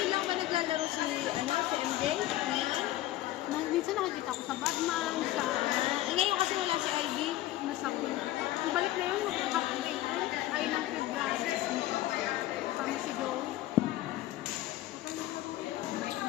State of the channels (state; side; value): quieter; right; 15.2 dB